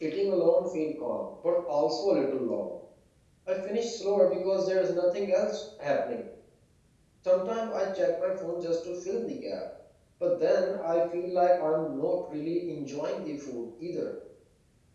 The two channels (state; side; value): identical; both; correlation 1.00